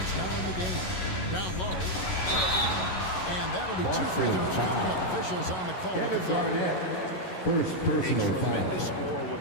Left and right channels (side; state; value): right; late; 11 ms